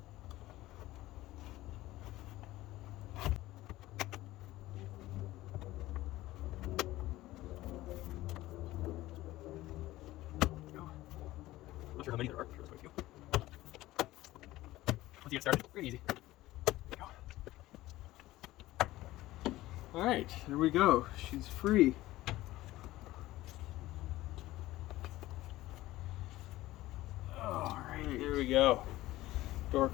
Not sure how many there are, sure there's quite a few. Once you get started, pretty easy. Alright, there we go. She's free. Alright, here we go. Door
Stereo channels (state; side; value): quieter; right; 16.8 dB